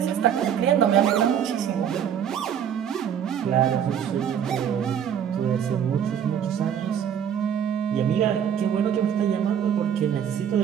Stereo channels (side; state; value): left; quieter; 8.7 dB